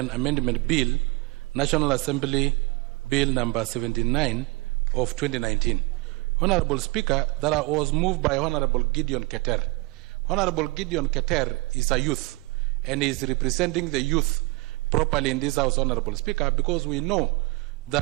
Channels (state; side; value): quieter; left; 24.8 dB